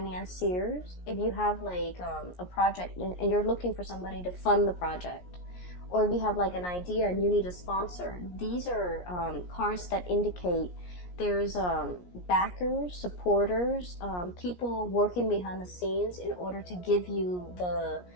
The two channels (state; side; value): late; right; 17 ms